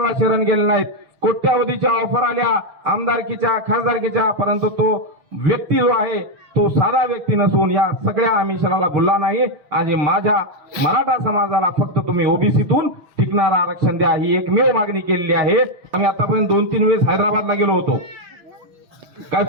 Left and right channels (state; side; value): late; left; 6.3 ms